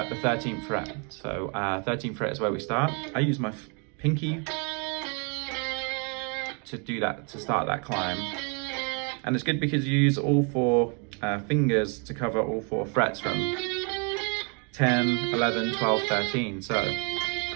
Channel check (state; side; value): quieter; left; 36.1 dB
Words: the 13th fret. So 13th fret is where we start. I use my pinky to do that, to start that climb. And it's good because you use all 4 fingers to cover all 4 frets from 10, 11, 12, 13. So